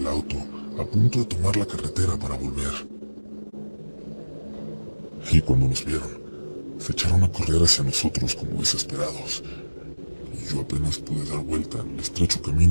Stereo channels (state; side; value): inverted; both; correlation -1.00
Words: auto, a punto de tomar la carretera para volver. Y cuando nos vieron, se echaron a correr hacia nosotros como desesperados. Y yo apenas pude dar vuelta en el estrecho